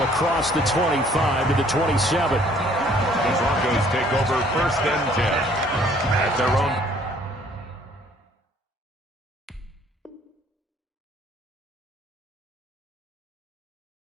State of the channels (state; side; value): normal; both; correlation 0.60